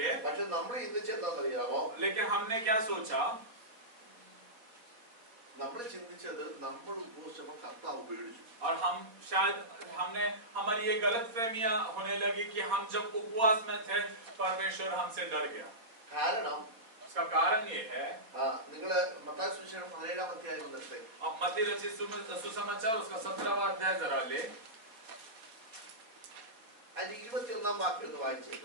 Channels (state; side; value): late; left; 4.3 ms